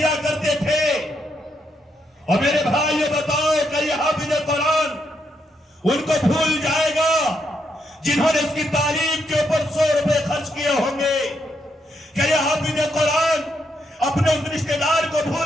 کرتے تھے، اور میرے بھائیو بتاؤ کہ یہ حافظ قرآن ان کو بھول جائے گا جنہوں نے اس کی تعلیم کے اوپر 100 روپے خرچ کیے ہوں گے؟ کہ یہ حافظ قرآن اپنے اس رشتہ دار کو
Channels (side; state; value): both; normal; correlation 0.78